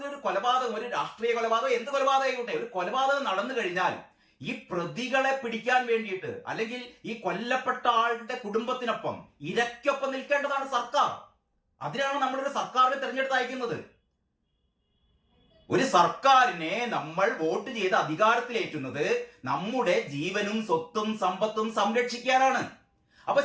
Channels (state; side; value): identical; both; correlation 1.00